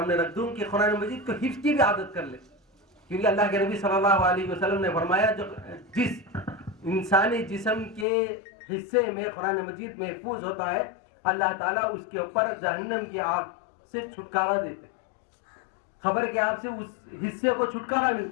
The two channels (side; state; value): right; drops out; at 8.1 s